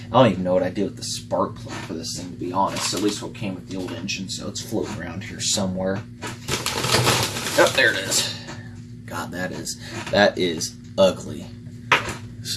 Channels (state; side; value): identical; both; correlation 1.00